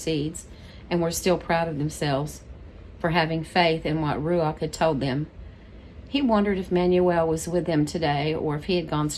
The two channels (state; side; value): identical; both; correlation 1.00